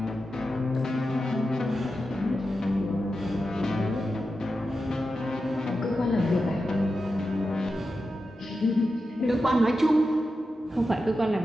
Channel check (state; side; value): normal; both; correlation 0.90